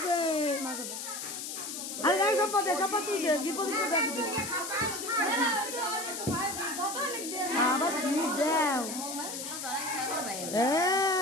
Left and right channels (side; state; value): left; noise; hiss, 6 dB below the sound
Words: আরে গাই সম্পদ তুই দে কি প্রদীপ দেখবি আবার ঠিক দাও